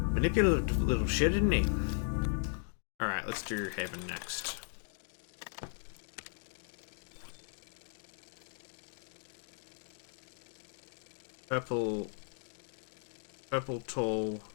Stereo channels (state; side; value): silent; right; digital silence